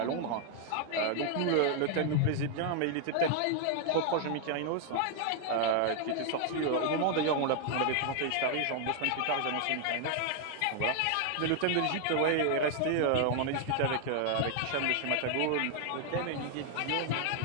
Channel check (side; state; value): both; different; correlation 0.00